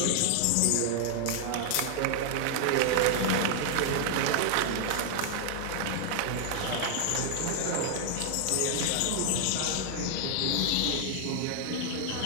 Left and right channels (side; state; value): both; different; correlation 0.00